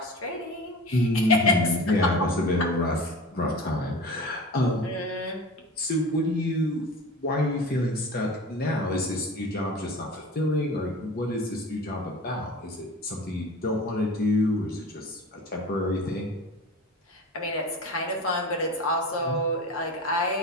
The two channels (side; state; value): both; normal; correlation 0.35